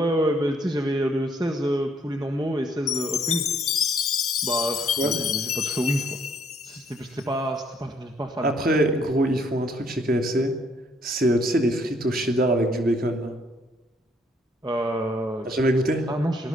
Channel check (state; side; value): normal; both; correlation 0.66